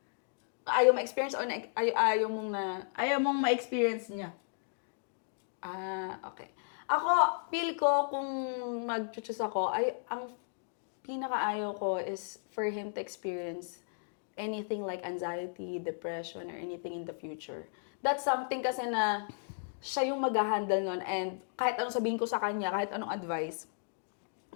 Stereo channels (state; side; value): silent; right; digital silence